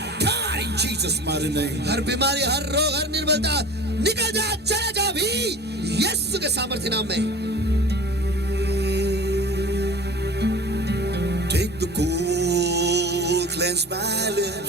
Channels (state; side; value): normal; both; correlation 0.40